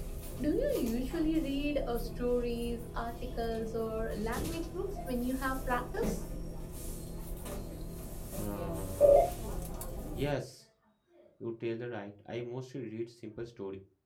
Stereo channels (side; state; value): both; identical; correlation 1.00